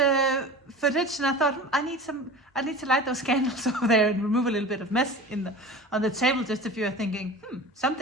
footage and I thought I need to light those candles over there and remove a little bit of mess on the table. Just if you're thinking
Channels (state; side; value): normal; both; correlation 0.36